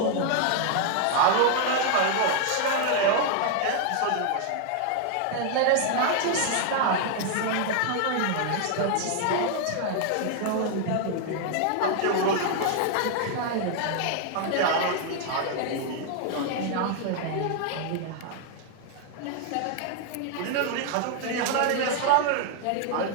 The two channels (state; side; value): different; both; correlation 0.00